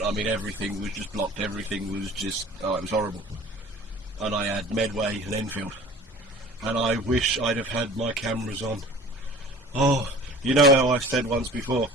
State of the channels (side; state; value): both; normal; correlation 0.44